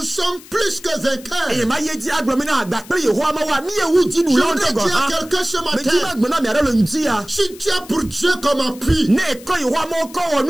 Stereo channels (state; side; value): noise; left; hiss, 20 dB below the sound